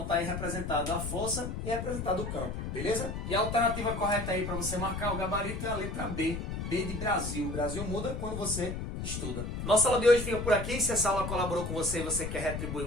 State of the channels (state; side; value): noise; left; rumble, 5 dB below the sound